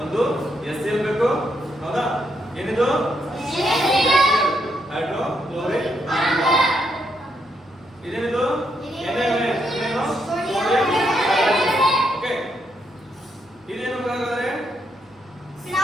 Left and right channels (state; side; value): normal; both; correlation 0.78